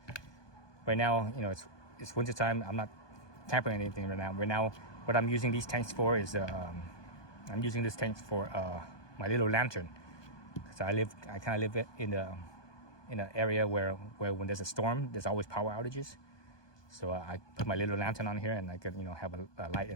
Right now, it's winter time. I'm not tampering anything right now. Right now, what I'm using these tanks for is I'm using this tank for my little lantern. So I kind of live in the in an area where when there's a storm, there's always power outages. So I put my little lantern on here, and I could have a light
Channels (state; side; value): late; right; 1.2 ms